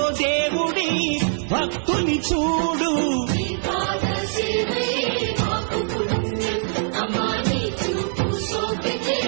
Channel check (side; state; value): left; silent; digital silence